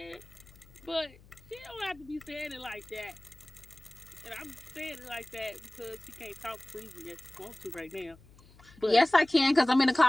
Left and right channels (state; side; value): noise; left; hum, 24 dB below the sound